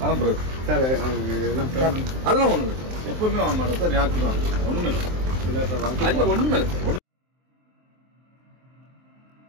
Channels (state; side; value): late; left; 23 ms